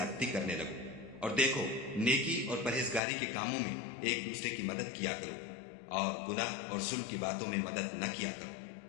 کرنے لگو۔ اور دیکھو، نیکی اور پرہیزگاری کے کاموں میں ایک دوسرے کی مدد کیا کرو، اور گناہ اور ظلم کی باتوں میں مدد نہ کیا کرو،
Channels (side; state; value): right; drops out; at 3.0 s